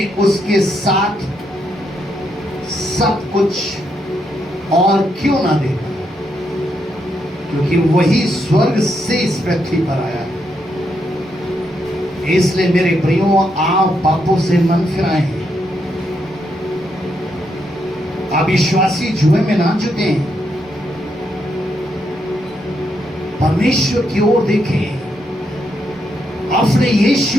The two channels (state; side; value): normal; both; correlation 0.79